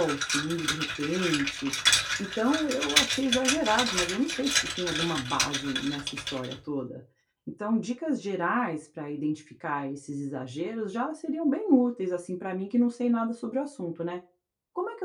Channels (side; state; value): both; identical; correlation 1.00